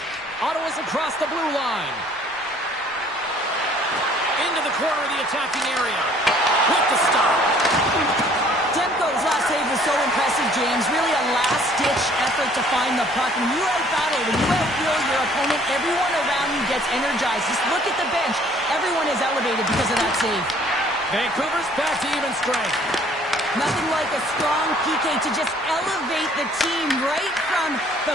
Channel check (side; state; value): right; noise; rumble, 29 dB below the sound